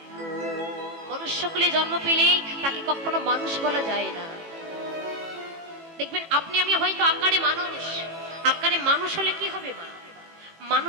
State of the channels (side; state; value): left; late; 18 ms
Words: মনুষ্যকুলে জন্ম পেলেই তাকে কখনো মানুষ বলা যায় না। দেখবেন আপনি আমি হয়তো আকারে মানুষ, আকারে মানুষ হলে কি হবে মা?